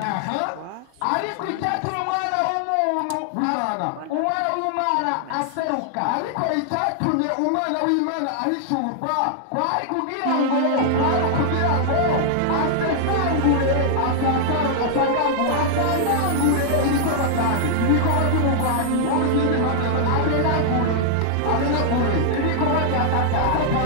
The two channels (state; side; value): different; both; correlation -0.01